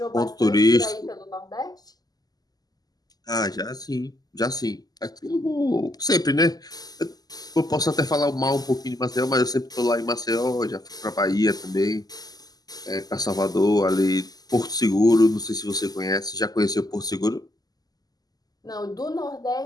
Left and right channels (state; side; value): late; right; 0.19 ms